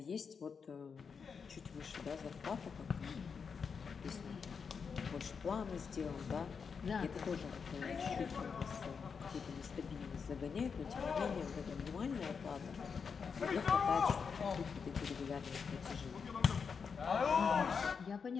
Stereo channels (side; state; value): right; quieter; 5.9 dB